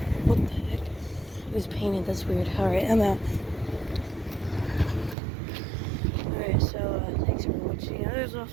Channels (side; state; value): left; drops out; at 5.2 s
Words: the heck? It was painted. That's weird. Alright, I'm out. Alright, so thanks for watching. There's